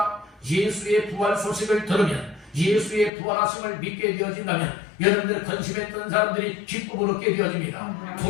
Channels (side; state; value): right; drops out; at 3.1 s